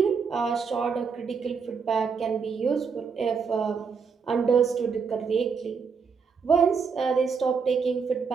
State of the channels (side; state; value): left; quieter; 5.7 dB